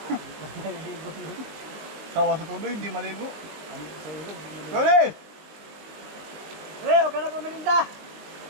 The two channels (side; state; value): left; late; 20 ms